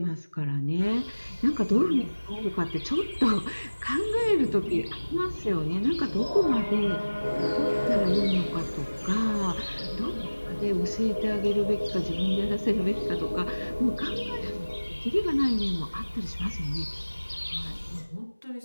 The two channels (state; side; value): inverted; both; correlation -1.00